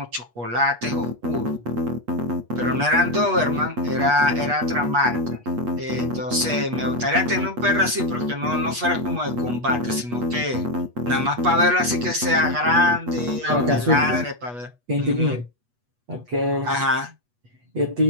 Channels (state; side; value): late; left; 8.3 ms